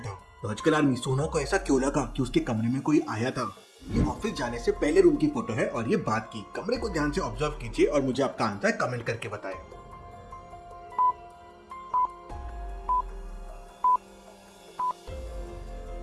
लॉजिकल आर्मी, सोना को ऐसा क्यों लगा कि उसके कमरे में कोई आया था? ये ऑफिस जाने से पहले रूम की फोटो है और ये बात की। कमरे को ध्यान से ऑब्जर्व कीजिए और मुझे आपका आंसर कमेंट करके बताएं।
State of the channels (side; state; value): both; identical; correlation 1.00